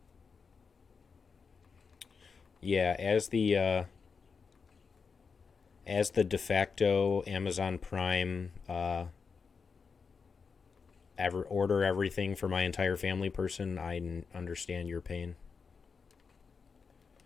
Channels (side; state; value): right; quieter; 5.4 dB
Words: Yeah, as the de facto Amazon Prime order everything for my entire family person, I understand your pain.